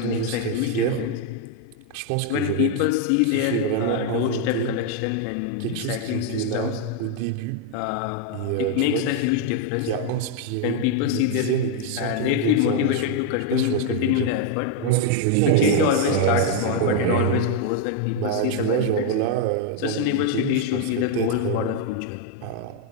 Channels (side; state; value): both; different; correlation 0.00